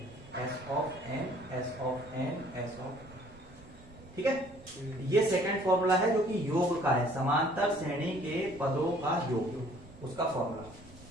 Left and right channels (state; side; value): normal; both; correlation 0.57